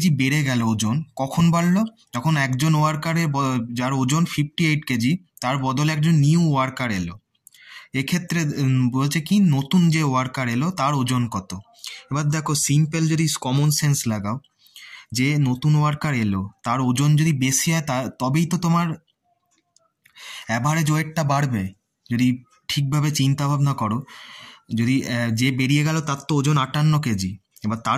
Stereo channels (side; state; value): both; identical; correlation 1.00